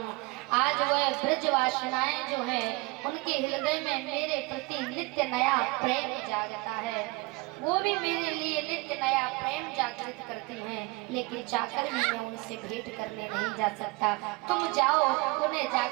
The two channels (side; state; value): left; quieter; 25.4 dB